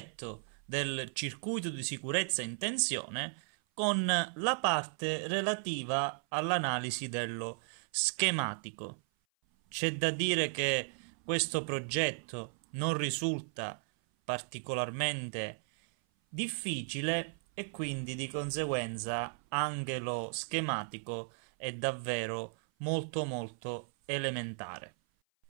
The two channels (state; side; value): silent; left; 54 dB below the other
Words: del circuito di sicurezza in tensione con la parte relativa all'analisi dello schematico. C'è da dire che questo progetto non risulta particolarmente difficile e quindi di conseguenza anche lo schematico è davvero molto elementare.